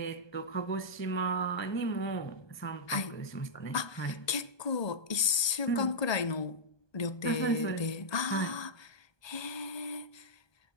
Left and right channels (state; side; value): late; right; 1.2 ms